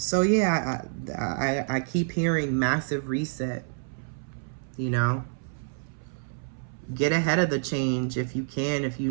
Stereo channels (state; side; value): silent; left; 59 dB below the other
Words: yeah, I keep hearing massive reset, you know. Get ahead of the change if you can. If you